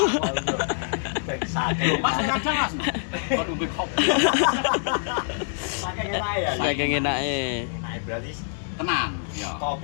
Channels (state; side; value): silent; right; digital silence